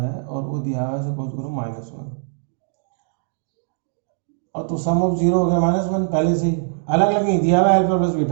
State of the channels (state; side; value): silent; left; digital silence